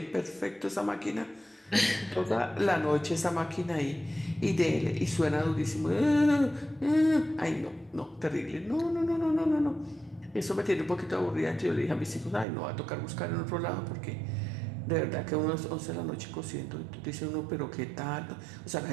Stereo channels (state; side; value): drops out; left; at 12.5 s